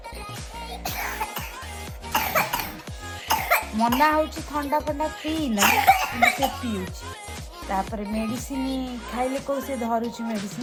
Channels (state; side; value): identical; both; correlation 1.00